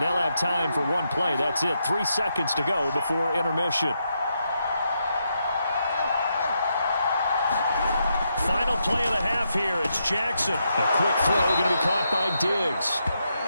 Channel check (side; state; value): both; inverted; correlation -0.82